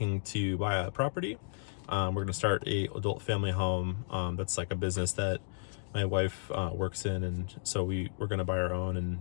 to buy a property. We're going to start a adult family home. That's like a business that my wife works in, and so we're going to buy our own,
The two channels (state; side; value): silent; right; digital silence